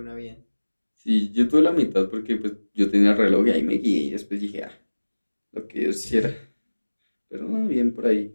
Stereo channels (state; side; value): inverted; both; correlation -1.00